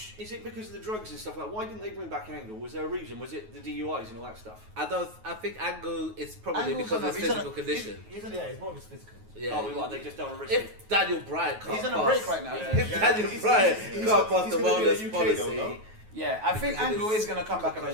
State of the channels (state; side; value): late; left; 9.3 ms